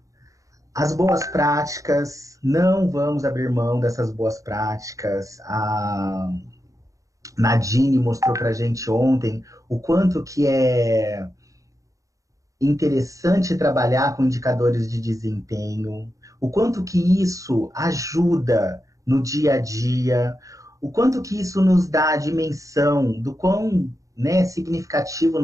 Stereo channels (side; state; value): left; late; 0.16 ms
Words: As boas práticas, não vamos abrir mão dessas boas práticas. A Nadine mostrou para a gente ontem o quanto que é interessante trabalhar com indicadores de desempenho, o quanto que isso ajuda no dia a dia, o quanto que isso nos dá a dimensão do quão, né, significativo